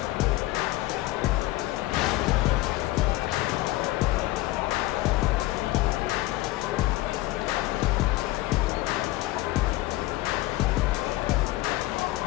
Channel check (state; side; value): quieter; right; 18.0 dB